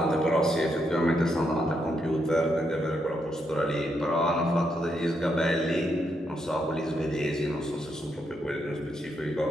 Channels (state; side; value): normal; both; correlation 0.79